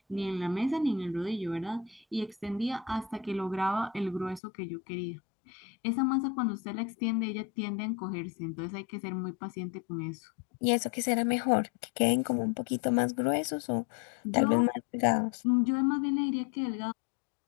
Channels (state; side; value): drops out; right; at 4.4 s